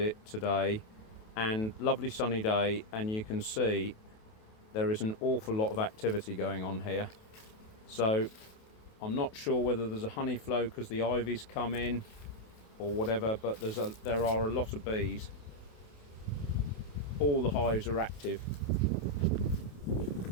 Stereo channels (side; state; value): right; late; 28 ms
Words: today and lovely sunny day, and you can see there is an awful lot of activity going on here. So I'm not sure whether there's a honey flow because the ivy's come in or whatever, but there are a lot of bees. All the hives are active,